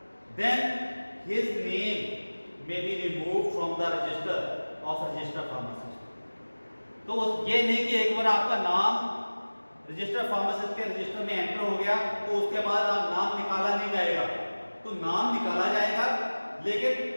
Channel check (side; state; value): both; inverted; correlation -1.00